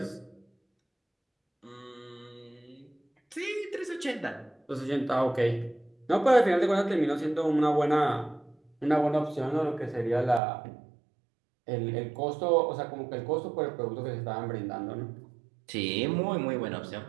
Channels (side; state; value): left; drops out; at 10.4 s